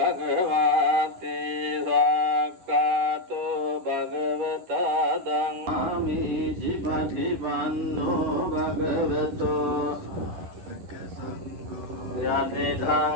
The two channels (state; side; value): late; left; 10 ms